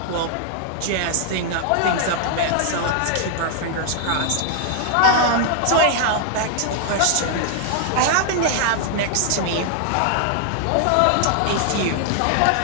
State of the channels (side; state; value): both; different; correlation 0.00